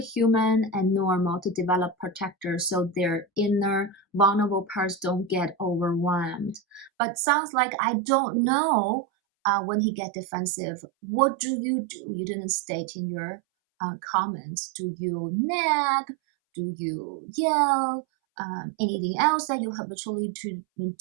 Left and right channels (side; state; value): left; drops out; at 6.9 s